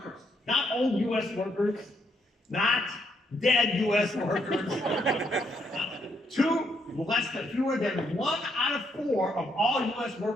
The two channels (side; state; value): both; normal; correlation 0.74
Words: old U.S. workers, not dead U.S. workers, fewer than 1 out of 4 of all U.S.